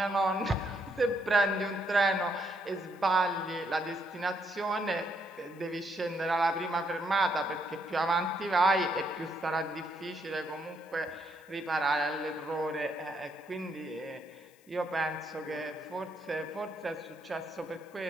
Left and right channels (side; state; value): left; noise; hiss, 29 dB below the sound